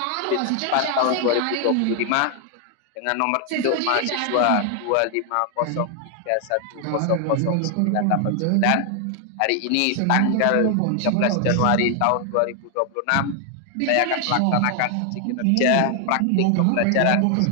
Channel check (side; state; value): both; different; correlation 0.00